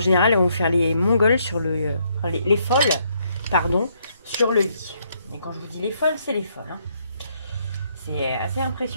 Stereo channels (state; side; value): inverted; both; correlation -0.72